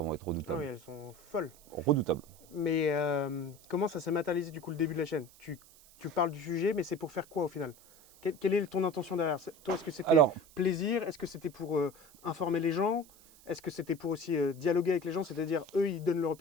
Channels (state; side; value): noise; right; hiss, 24 dB below the sound